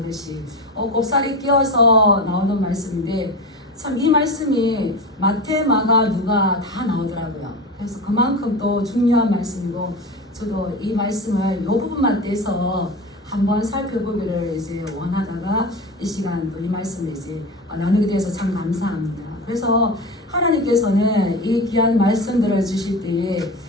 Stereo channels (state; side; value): normal; both; correlation 0.26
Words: 곱살이 끼어서 나오는 말씀인데, 참 이 말씀이 마태, 마가, 누가 다 나오더라고요. 그래서 그만큼 또 중요한 말씀이고, 저도 이 말씀을 이 부분만 떼서 한번 살펴보기를 이제 원하다가 이 시간 또 이 말씀을 이제 나누게 돼서 참 감사합니다. 그래서 하나님께서는 이 귀한 말씀들을 주실 때에